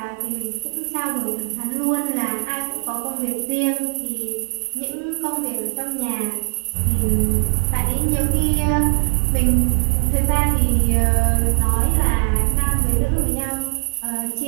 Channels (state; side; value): silent; left; digital silence